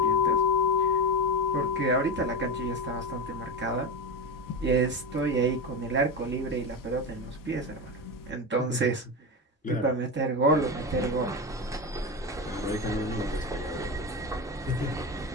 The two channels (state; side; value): normal; both; correlation 0.19